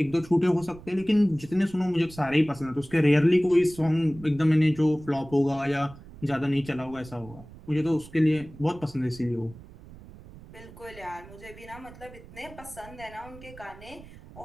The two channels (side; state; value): right; noise; rumble, 19 dB below the sound